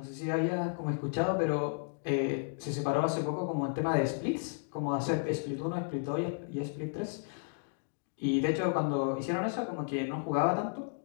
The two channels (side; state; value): right; silent; digital silence